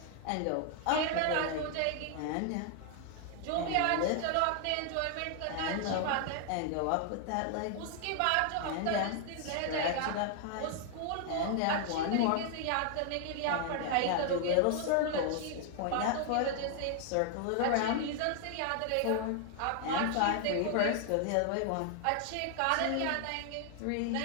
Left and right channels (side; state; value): both; different; correlation 0.00